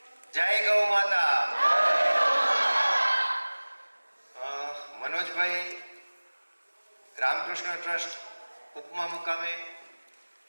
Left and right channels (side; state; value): both; inverted; correlation -1.00